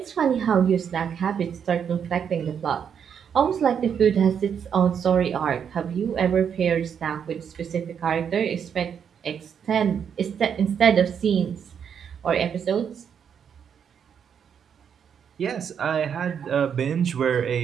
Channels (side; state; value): left; quieter; 7.7 dB